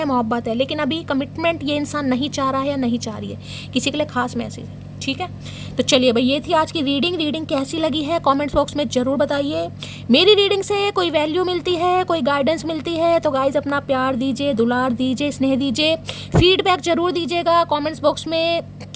मोहब्बत है, लेकिन अभी कमिटमेंट ये इंसान नहीं चाह रहा है या नहीं चाह रही है। किसी के लिए खास मैसेज है, ठीक है। तो चलिए भाई, ये थी आज की रीडिंग कैसी लगी है कमेंट्स बॉक्स में ज़रूर बताइए। मेरी रीडिंग से कोई वैल्यू मिलती है, कोई गाइडेंस मिलती है तो गाइज अपना प्यार दीजिए, दुलार दीजिए, स्नेह दीजिए, फीडबैक ज़रूर दीजिएगा कमेंट्स बॉक्स में।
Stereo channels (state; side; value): identical; both; correlation 1.00